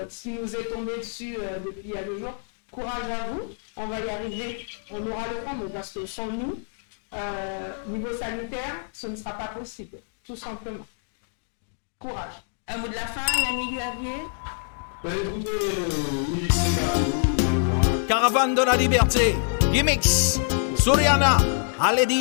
nous est tombé dessus depuis il y a 2 jours. Courage à vous, on va y arriver, on aura le temps, parce que sans nous, niveau sanitaire, ce ne sera pas possible, tout simplement. Courage. Un mot de la fin, Yannick Xavier? Caravane de la liberté, Gimmicks, Soriana, allez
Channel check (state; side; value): silent; right; 61 dB below the other